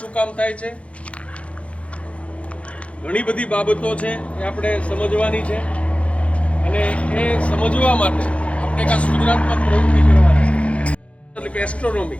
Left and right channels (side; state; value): right; late; 0.062 ms